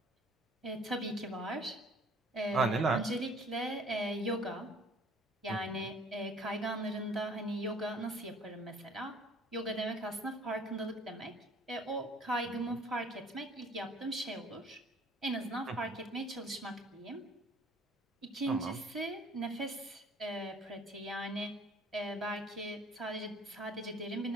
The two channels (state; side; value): normal; both; correlation 0.55